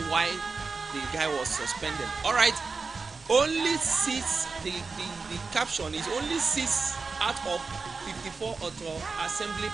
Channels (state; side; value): quieter; left; 4.4 dB